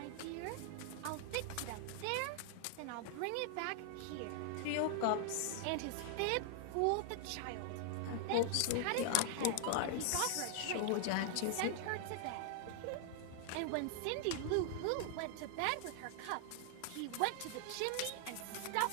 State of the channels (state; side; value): different; both; correlation 0.00